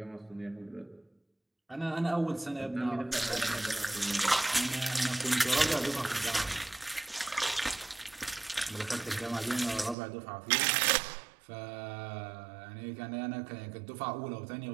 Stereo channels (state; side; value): drops out; left; at 10.0 s